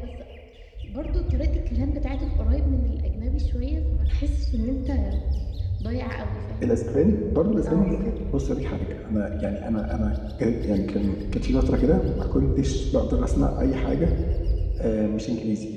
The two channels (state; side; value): identical; both; correlation 1.00